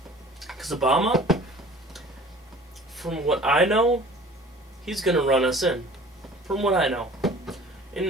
Because Obama, from what I know, he's gonna run us in. From what I know.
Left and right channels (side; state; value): both; normal; correlation 0.47